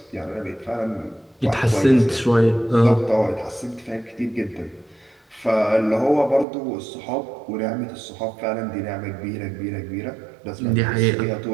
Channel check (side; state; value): left; drops out; at 6.5 s